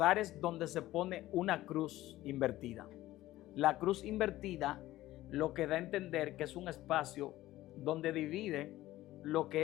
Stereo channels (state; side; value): quieter; right; 15.9 dB